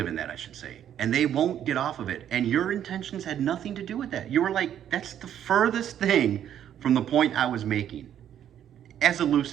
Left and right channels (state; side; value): quieter; left; 10.2 dB